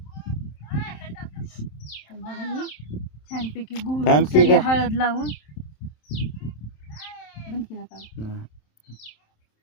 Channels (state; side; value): late; right; 27 ms